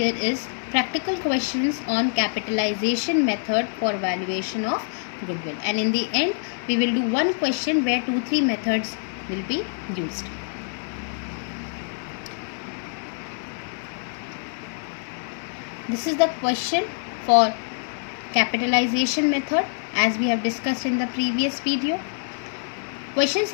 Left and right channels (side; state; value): right; silent; 62 dB below the other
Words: is practical questions on capitalization method for valuation of goodwill, and in the end we will do one question where 2-3 methods will be used. This is the question for capitalization method as we have discussed in the previous video. Question